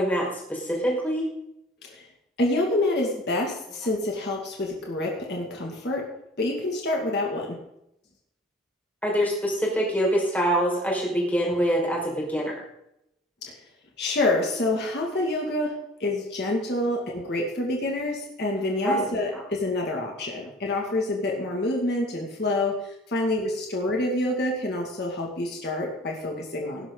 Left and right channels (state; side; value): normal; both; correlation 0.47